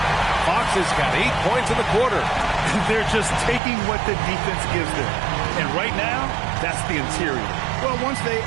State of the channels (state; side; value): drops out; left; at 3.6 s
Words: Fox has got 8 points in the quarter. They're just taking what the defense gives them. And right now, that's the interior. Well, once they